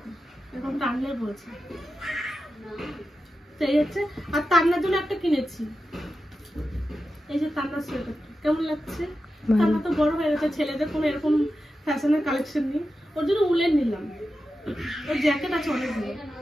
এরকম টানলে বলছে, সেই হচ্ছে। আর তান্নার জন্য একটা কিনেছি, এই যে তান্নার সোয়েটার। কেমন লাগছে? তান্না তো বড় হয়ে গেছে, ছেলেদের কোনো এরকম ফ্যাশনের কালেকশন নেই, ওর জন্য উলের নিলাম। ওর জ্যাকেট আছে অনেকগুলো,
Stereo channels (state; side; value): normal; both; correlation 0.91